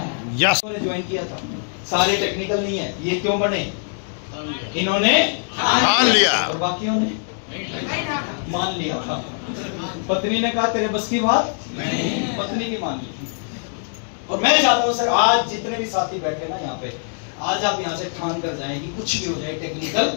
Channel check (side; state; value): right; silent; digital silence